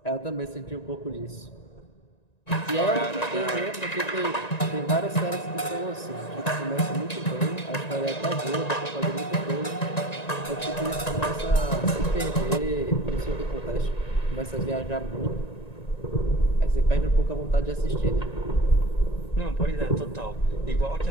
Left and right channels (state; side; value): late; right; 1.9 ms